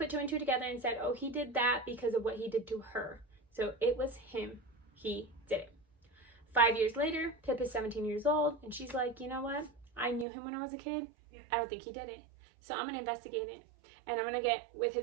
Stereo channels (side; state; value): left; drops out; at 10.2 s